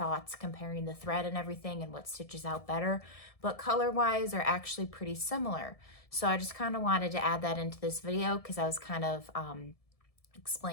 comparing the thread and everything and what stitches out better. But color-wise, are actually pretty similar. So I just kind of wanted to add that into this video because I was kind of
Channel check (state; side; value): late; right; 1.7 ms